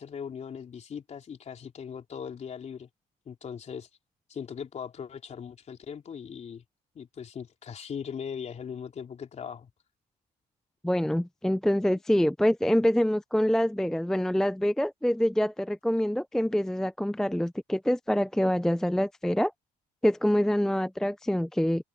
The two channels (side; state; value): both; normal; correlation 0.98